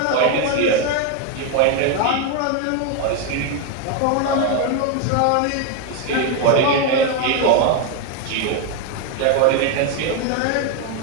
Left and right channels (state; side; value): different; both; correlation 0.02